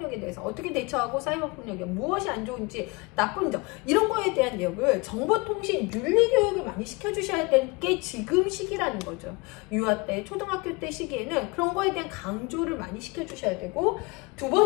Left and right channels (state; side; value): quieter; right; 26.5 dB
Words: 대해서 어떻게 대처하고, 사이버 폭력이 무엇이 안 좋은지, 나쁜 점, 이런 거에 대한 내용을 정보통신 윤리 교육을 많이 시켜주셔야 될 게 지금 시기라는 거죠. 유아 때, 초등학교 때 시기에는 그런 거에 대한 강조를 많이 시켜주셔야 되고, 두